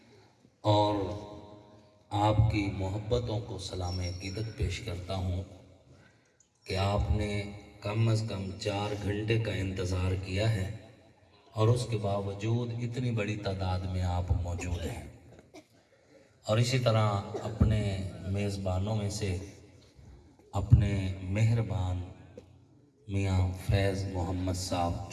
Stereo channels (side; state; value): both; identical; correlation 1.00